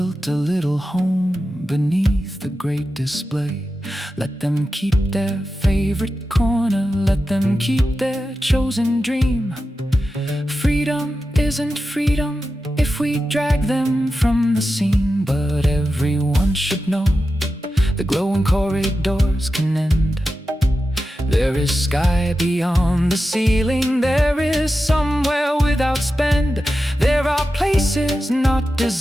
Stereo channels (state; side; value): normal; both; correlation 0.92